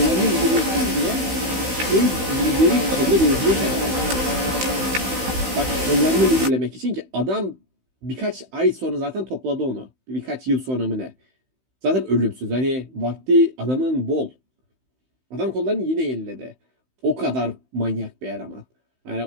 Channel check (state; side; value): late; left; 16 ms